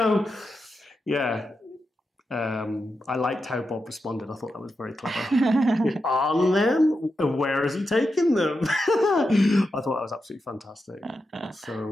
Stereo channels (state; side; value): normal; both; correlation 0.88